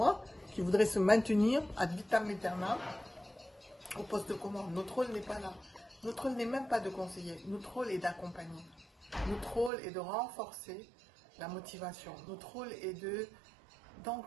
qui voudraient se maintenir ad vitam aeternam au poste de commande. Notre rôle n'est pas là. Notre rôle n'est même pas de conseiller. Notre rôle est d'accompagner. Notre rôle est de renforcer la motivation. Notre rôle est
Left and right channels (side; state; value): left; drops out; at 9.7 s